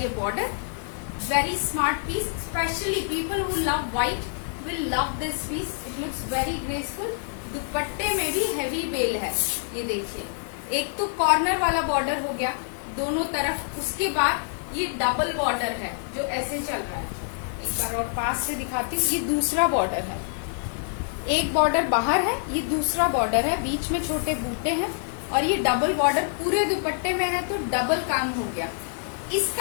border. Very smart piece, specially people who love white will love this piece. It looks very graceful. दुपट्टे में भी हेवी बेल है। ये देखिए, एक तो कॉर्नर वाला बॉर्डर हो गया दोनों तरफ, उसके बाद ये डबल बॉर्डर है जो ऐसे चल रहा है। एक बार और पास से दिखाती हूँ। ये दूसरा बॉर्डर है, एक बॉर्डर बाहर है, ये दूसरा बॉर्डर है, बीच में छोटे बूटे हैं और ये डबल बॉर्डर पूरे दुपट्टे में है तो डबल काम हो गया।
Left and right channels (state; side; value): silent; right; digital silence